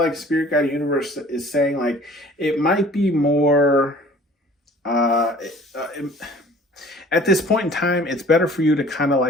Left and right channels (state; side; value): normal; both; correlation 0.50